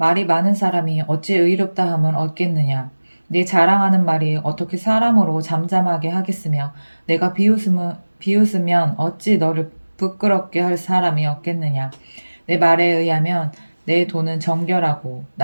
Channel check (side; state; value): both; inverted; correlation -1.00